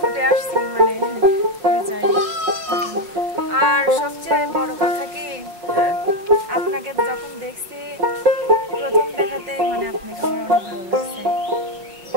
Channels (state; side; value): late; left; 5.3 ms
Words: আসছি, মানে যাই। আর সবচেয়ে বড় কথা কি, আপনাকে যখন দেখছি প্রথম দেখাতেই মানে আপনাকে আমার অনেক ভালো লাগছে।